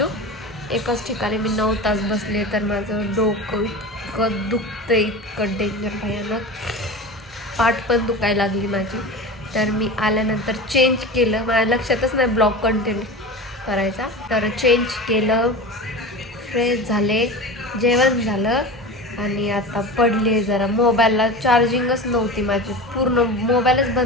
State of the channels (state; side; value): normal; both; correlation 0.30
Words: एकाच ठिकाणी मी 9 तास बसले. तर माझं डोकं इतकं दुखतं, इतकं डेंजर भयानक. पाठ पण दुखायला लागली माझी. तर मी आल्यानंतर चेंज केलं. माझ्या लक्षातच नाही ब्लॉग कंटिन्यू करायचा. तर चेंज केलं, फ्रेश झाले, जेवण झालं आणि आता पडले जरा. मोबाईलला चार्जिंगच नव्हती माझी, पूर्ण मोबाईलच